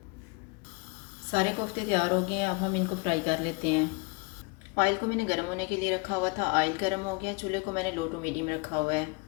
सारे कोफ्ते तैयार हो गए हैं, अब हम इनको फ्राई कर लेते हैं। ऑयल को मैंने गर्म होने के लिए रखा हुआ था। ऑयल गर्म हो गया, चूल्हे को मैंने लो टू मीडियम रखा हुआ है।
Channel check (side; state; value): right; quieter; 29.4 dB